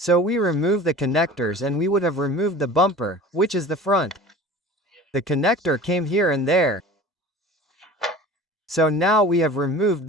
we remove the connectors and we would have removed the bumper, which is the front. The connector came here and there. So now we have removed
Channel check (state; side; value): normal; both; correlation 0.40